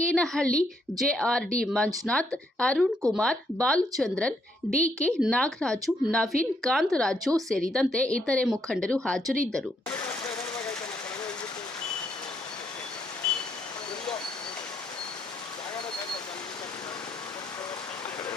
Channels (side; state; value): both; normal; correlation 0.74